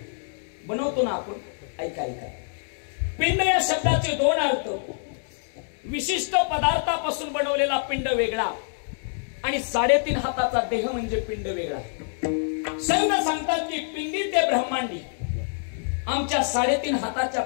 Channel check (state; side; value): silent; right; digital silence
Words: बनवतो ना आपण. ऐका ऐका, पिंड या शब्दाचे दोन अर्थ. विशिष्ट पदार्थापासून बनवलेला पिंड वेगळा आणि 3.5 हाताचा देह म्हणजे पिंड वेगळा. संत सांगतात की पिंडी ते ब्रह्मांडी. आमच्या 3.5 हाताच्या